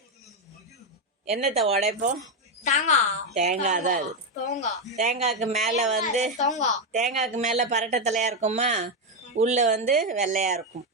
என்னத்தை உடைப்போம்? தேங்காய் தான் அது. தேங்காய்க்கு மேல பரட்டை தலையா இருக்குமா, உள்ள வெள்ளையா இருக்கும்.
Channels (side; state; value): both; normal; correlation 0.06